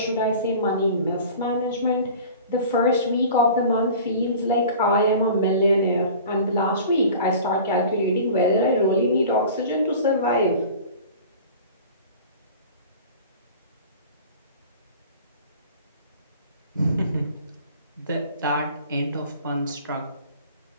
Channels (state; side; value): inverted; both; correlation -0.41